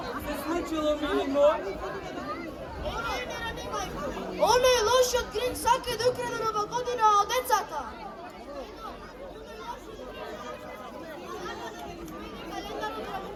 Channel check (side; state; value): both; identical; correlation 1.00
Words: се случило, мили мој? Оној лошиот Гринч сака да украде нова година од децата. Календарот на